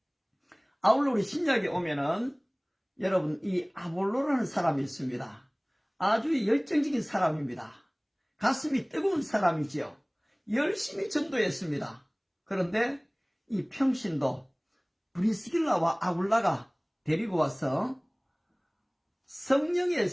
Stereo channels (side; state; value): both; identical; correlation 1.00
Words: 아울러 우리 신약에 오면은 여러분, 이 아볼로라는 사람이 있습니다. 아주 열정적인 사람입니다. 가슴이 뜨거운 사람이지요. 열심히 전도했습니다. 그런데 이 평신도 브리스길라와 아굴라가 데리고 와서 성령의